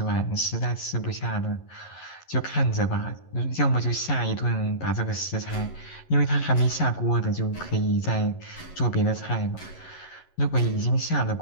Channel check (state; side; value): late; right; 11 ms